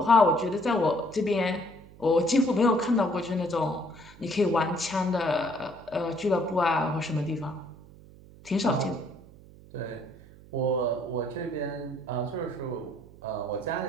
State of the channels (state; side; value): noise; right; hum, 21 dB below the sound